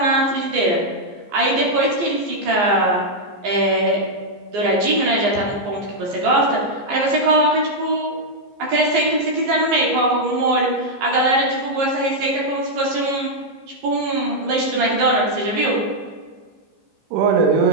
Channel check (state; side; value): late; left; 15 ms